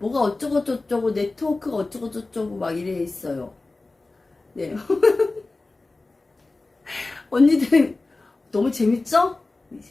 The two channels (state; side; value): quieter; right; 3.3 dB